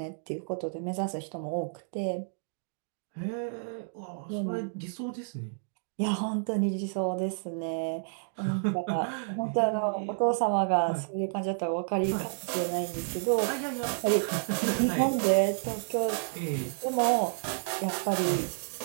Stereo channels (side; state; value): left; silent; digital silence